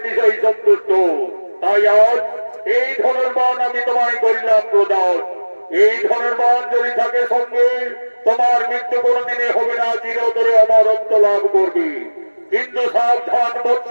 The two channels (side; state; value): both; inverted; correlation -1.00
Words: সন্তুষ্ট। তাই আজ এই ধনুর্বাণ আমি তোমায় করিলাম প্রদান। এই ধনুর্বাণ যদি থাকে সঙ্গে তোমার মৃত্যু কোনদিনে হবে না, চিরতরে অমরত্ব লাভ করবে। কিন্তু সাবধান